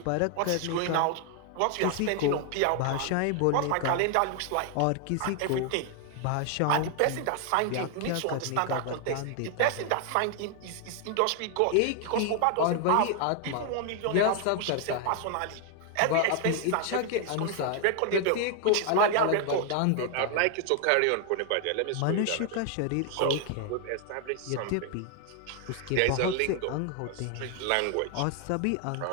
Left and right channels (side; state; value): both; different; correlation 0.00